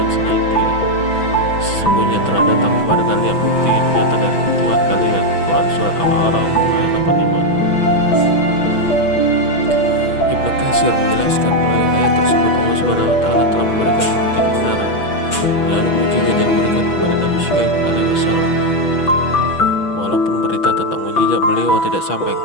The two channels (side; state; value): right; late; 6.1 ms